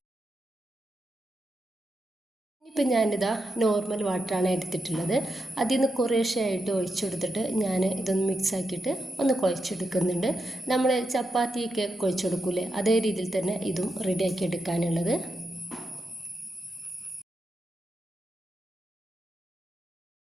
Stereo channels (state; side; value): normal; both; correlation 0.85